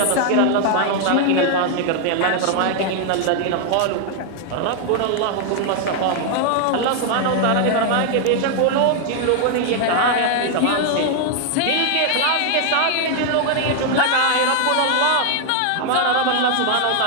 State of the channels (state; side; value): different; both; correlation 0.00